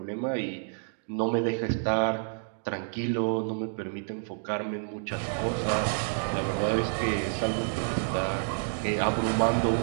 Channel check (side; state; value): left; silent; digital silence